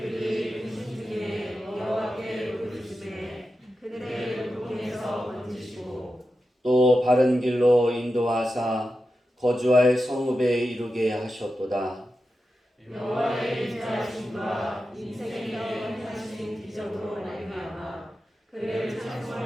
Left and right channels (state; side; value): normal; both; correlation 0.91